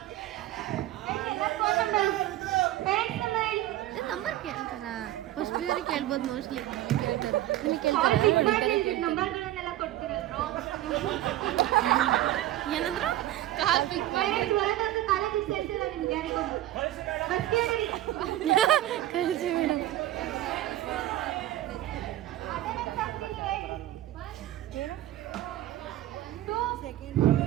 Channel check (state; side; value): quieter; left; 14.5 dB